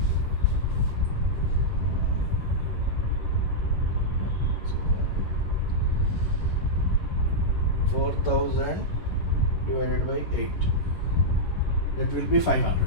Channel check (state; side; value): late; right; 11 ms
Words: $4,000 divided by 8. That will be